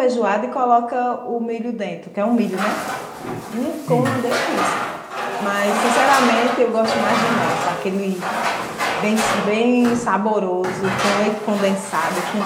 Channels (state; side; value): identical; both; correlation 1.00